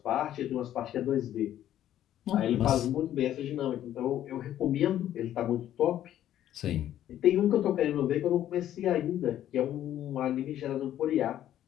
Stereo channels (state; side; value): quieter; right; 11.9 dB